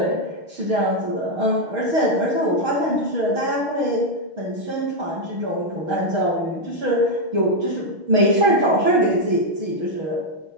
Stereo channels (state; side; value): late; left; 6.4 ms